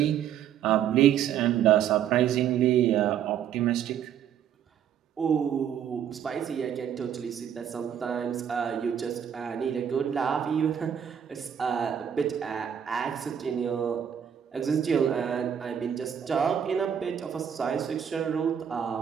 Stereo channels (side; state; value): left; quieter; 9.0 dB